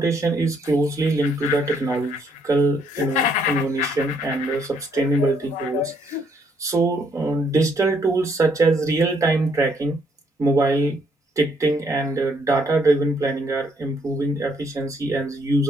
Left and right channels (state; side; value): normal; both; correlation 0.70